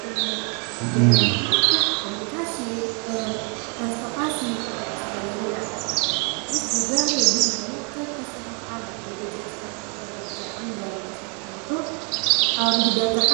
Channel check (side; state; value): left; quieter; 36.0 dB